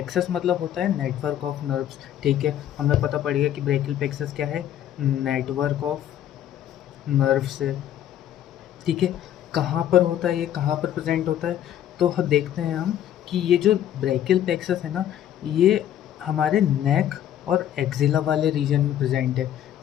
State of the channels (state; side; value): quieter; right; 11.0 dB